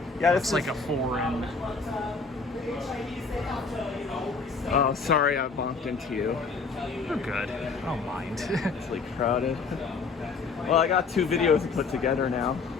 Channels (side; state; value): right; quieter; 4.6 dB